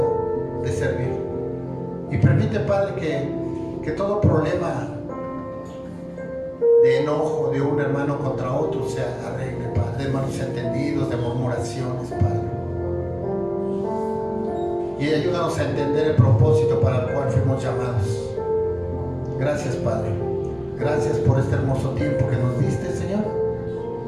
de servir. Y permite, Padre, que todo problema de enojo de un hermano contra otro se arregle, Padre, de malos entendidos, de murmuraciones, Padre. Y ayúdanos a entender el propósito para el cual fuimos llamados. Gracias, Padre. Gracias por este hermoso tiempo que nos diste, Señor.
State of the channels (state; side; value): identical; both; correlation 1.00